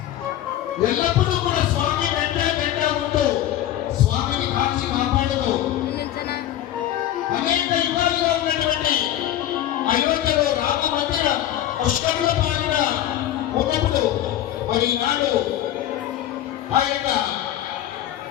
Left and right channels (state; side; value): quieter; right; 12.4 dB